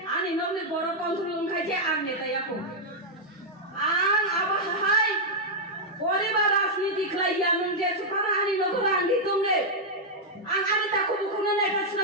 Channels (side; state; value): both; normal; correlation -0.04